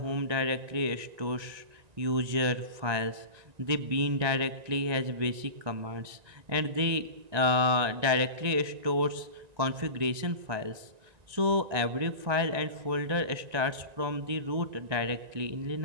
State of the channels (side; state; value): left; late; 1.9 ms